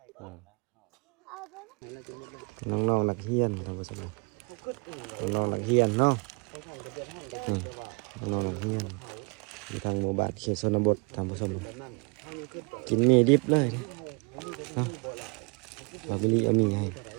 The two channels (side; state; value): left; quieter; 31.8 dB